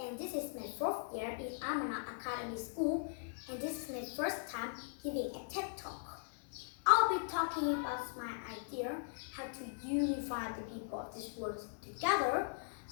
is my fourth year in Amana Academy School, and this is my first time giving a TED Talk. I'll be talking about my idea how to unify the people of this world together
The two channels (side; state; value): right; silent; 51 dB below the other